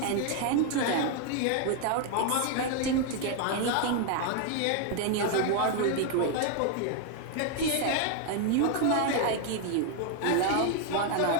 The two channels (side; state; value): both; different; correlation 0.00